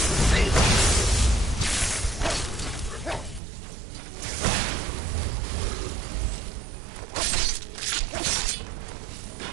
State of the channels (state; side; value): drops out; left; at 3.4 s